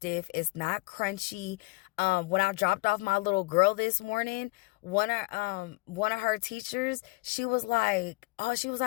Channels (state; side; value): quieter; right; 25.4 dB